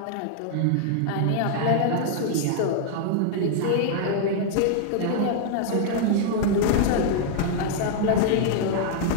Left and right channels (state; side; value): different; both; correlation -0.01